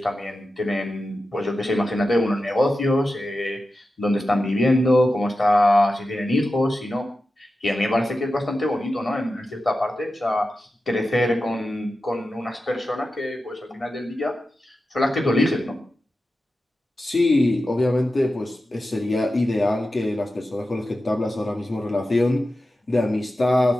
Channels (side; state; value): both; normal; correlation 0.92